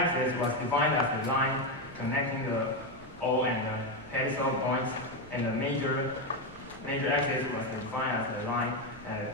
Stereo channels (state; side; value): noise; right; rumble, 21 dB below the sound